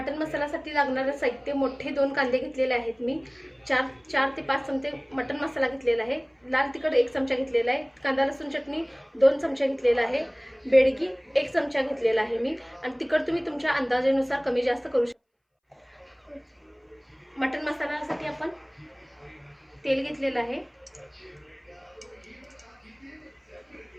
मसाल्यासाठी लागणारं साहित्य: मोठे 2 कांदे घेतलेले आहेत मी, 4 ते 5 चमचे मटन मसाला घेतलेला आहे, लाल तिखट 1 चमचा घेतलेला आहे, कांदा लसूण चटणी 2 चमचे घेतलेला आहे, बेडगी 1 चमचा घेतलेला आहे मी. आणि तिखट तुम्ही तुमच्या अंदाजानुसार कमी जास्त करू शकता. मटन मसाल्यासाठी आपण तेल घेतलेलं आहे.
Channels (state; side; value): identical; both; correlation 1.00